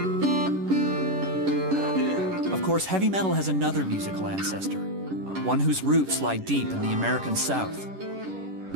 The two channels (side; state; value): left; late; 11 ms